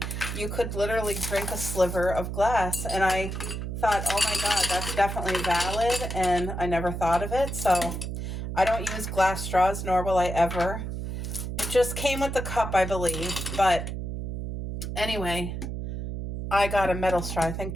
you could literally drink a sliver of glass. And I thought, oh my God, that's definitely valid. And I never thought of it. So I don't use glass straws, nor will I ever. It just came with the cup, I believe. But anyway, I got a metal straw, I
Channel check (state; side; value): noise; right; hum, 5 dB below the sound